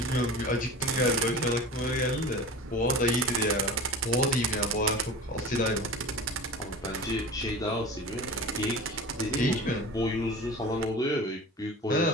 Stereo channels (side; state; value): both; normal; correlation 0.35